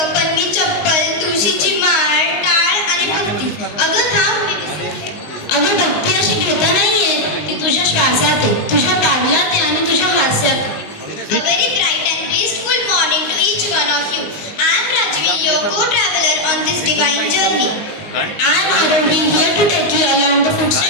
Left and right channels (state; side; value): late; right; 19 ms